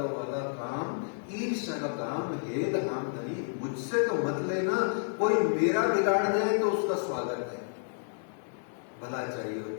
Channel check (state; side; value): silent; right; 57 dB below the other